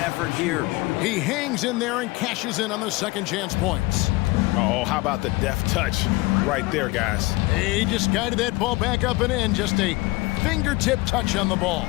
effort here. He hangs in there and cashes in on the second chance points. Oh, how about the deft touch right there, guys? He just guided that ball back up and in. Just a fingertip touch on the ball.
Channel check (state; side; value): quieter; right; 22.3 dB